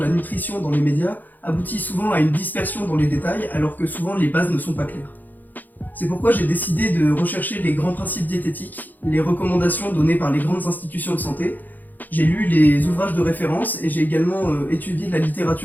nutrition dans les médias aboutit souvent à une dispersion dans les détails alors que souvent les bases ne sont pas claires. C'est pourquoi j'ai décidé de rechercher les grands principes diététiques, les recommandations données par les grandes institutions de santé. J'ai lu les ouvrages de référence et j'ai également étudié la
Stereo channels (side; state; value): right; late; 0.085 ms